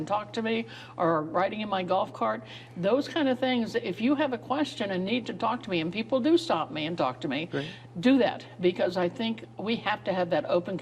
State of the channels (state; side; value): identical; both; correlation 1.00